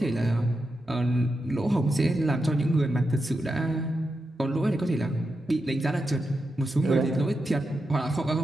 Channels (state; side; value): normal; both; correlation 0.88